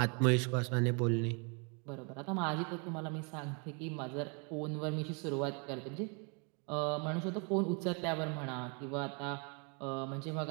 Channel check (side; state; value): left; quieter; 35.8 dB